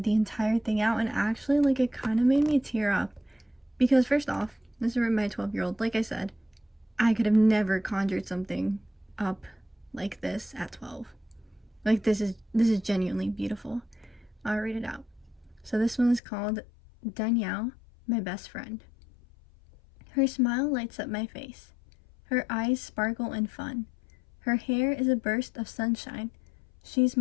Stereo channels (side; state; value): right; drops out; at 16.2 s